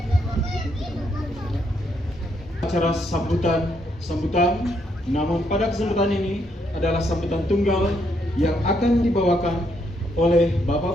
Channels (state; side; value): normal; both; correlation 0.75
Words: Acara sambutan, namun pada kesempatan ini adalah sambutan tunggal yang akan dibawakan oleh